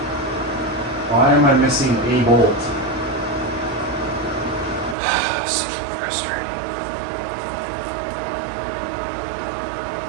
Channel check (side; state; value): left; drops out; at 5.0 s